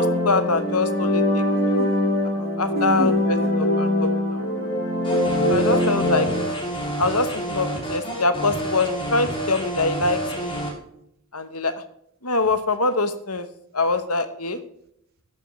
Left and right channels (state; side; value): normal; both; correlation -0.01